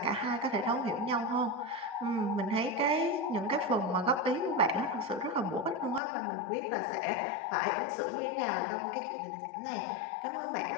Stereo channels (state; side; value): drops out; right; at 6.0 s